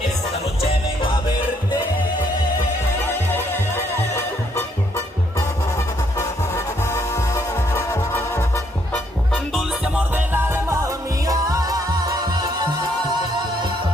Esta noche vengo a verte. Dulce amor del alma mía.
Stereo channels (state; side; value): normal; both; correlation 0.70